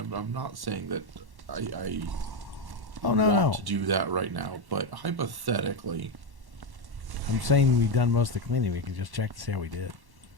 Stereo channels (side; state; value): left; late; 1.1 ms